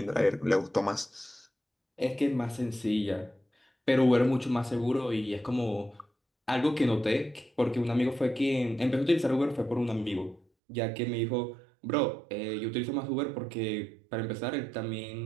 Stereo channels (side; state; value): left; drops out; at 10.4 s